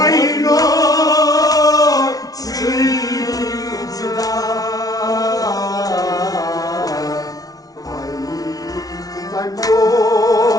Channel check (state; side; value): late; right; 0.18 ms